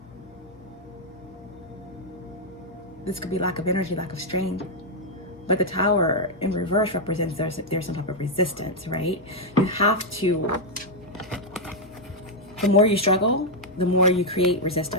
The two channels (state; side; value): normal; both; correlation -0.01